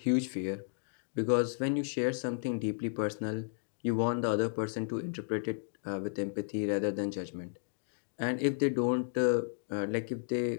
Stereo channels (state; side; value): silent; right; digital silence